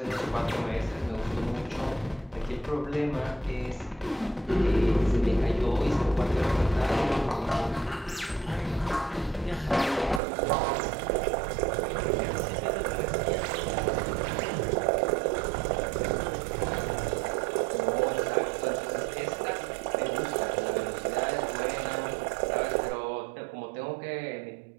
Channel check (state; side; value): drops out; left; at 10.2 s